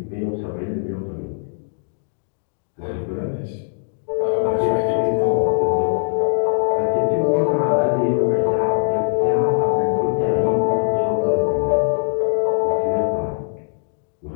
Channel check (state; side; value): silent; right; digital silence